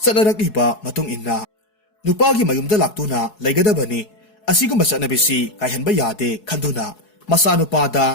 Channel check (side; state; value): right; late; 4.7 ms